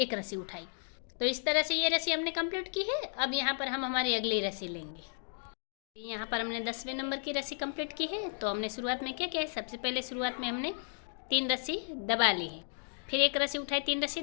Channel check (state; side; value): silent; right; digital silence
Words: रस्सी उठाई। तो इस तरह से ये रस्सी हमने कंप्लीट की है। अब यहाँ पर हम हमारी अगली रस्सी लेंगे। यहाँ पर हमने 10वें नंबर की रस्सी कंप्लीट की है। तो हमने शुरुआत में क्या किया है, सबसे पहले शुरुआत में हमने 3 रस्सी दबा ली है, फिर 1 रस्सी उठाई, 3 रस्सी